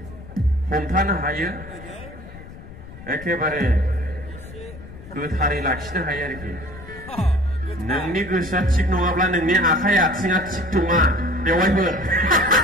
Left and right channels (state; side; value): noise; left; rumble, 16 dB below the sound